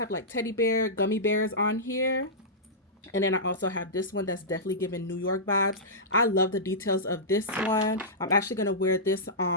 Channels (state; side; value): normal; both; correlation -0.14